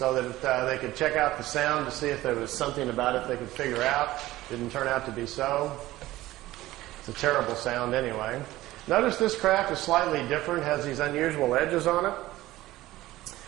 that they could check out the sound to see if there was something about it they could figure out. Didn't turn out to be so. It's a terrible sound anyway. Notice this craft is slightly different, has these unusual edges on it.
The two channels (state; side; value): quieter; left; 16.6 dB